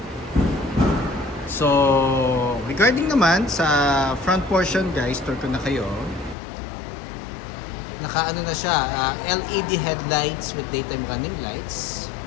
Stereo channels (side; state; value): right; drops out; at 6.4 s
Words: So regarding naman sa front portion guys, tour ko na kayo. Naka-ano na siya, LED headlights with daytime running lights.